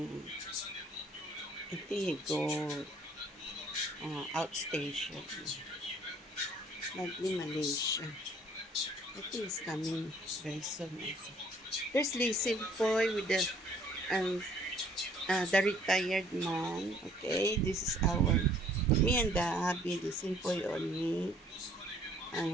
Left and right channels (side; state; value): both; normal; correlation 0.58